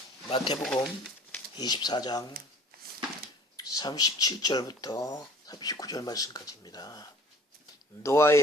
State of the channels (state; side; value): normal; both; correlation 0.49